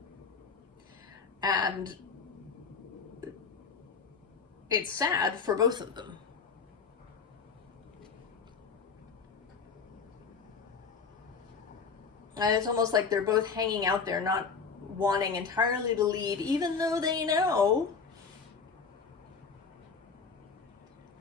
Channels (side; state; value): right; quieter; 5.4 dB